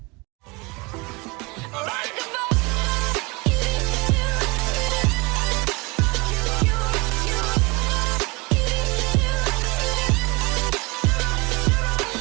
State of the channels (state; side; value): quieter; left; 26.7 dB